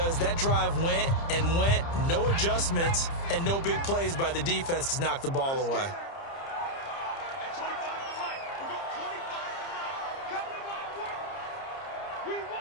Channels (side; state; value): right; late; 30 ms